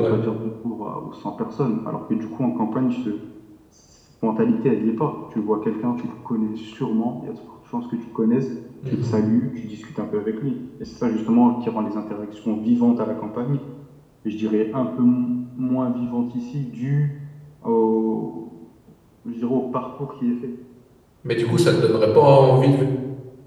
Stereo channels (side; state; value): both; identical; correlation 1.00